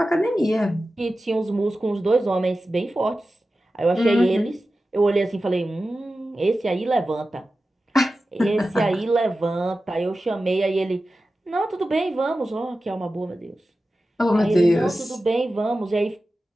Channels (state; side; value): normal; both; correlation 0.94